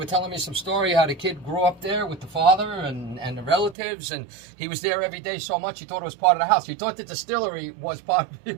telling me some story how the kid grew up there with the father and the relatives, and he was there every day so much he thought it was part of the house. He thought the distillery was it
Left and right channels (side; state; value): left; drops out; at 3.8 s